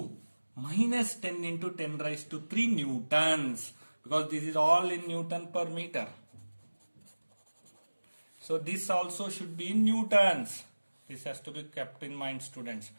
minus 10 into 10 raised to 3 newtons, because this is all in Newton per meter. So this also should be in newtons. This has to be kept in mind, students.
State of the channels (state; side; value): inverted; both; correlation -1.00